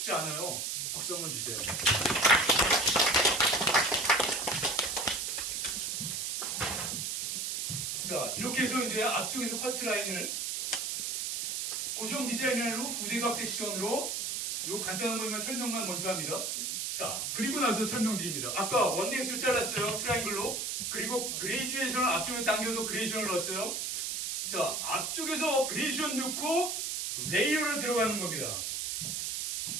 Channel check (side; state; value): right; noise; hiss, 2 dB below the sound